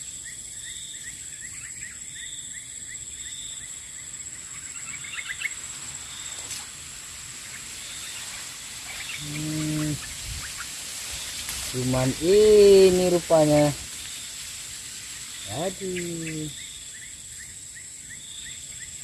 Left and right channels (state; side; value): identical; both; correlation 1.00